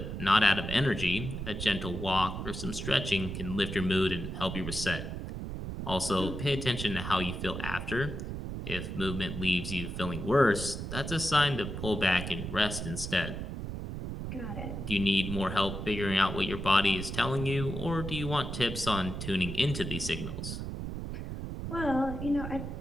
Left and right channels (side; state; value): right; noise; rumble, 6 dB below the sound